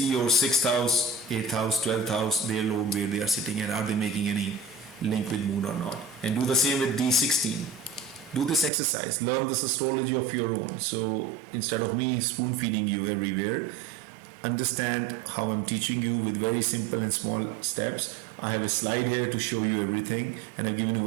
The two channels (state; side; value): drops out; left; at 8.7 s